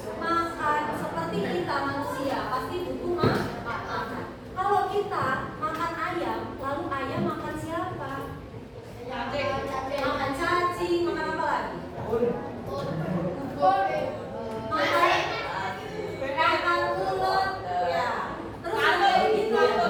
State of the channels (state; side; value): identical; both; correlation 1.00